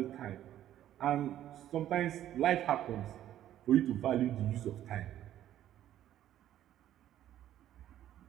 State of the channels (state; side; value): quieter; left; 12.0 dB